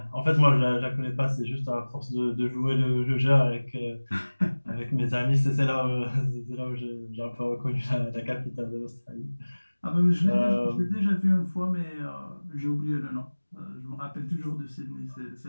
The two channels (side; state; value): both; inverted; correlation -1.00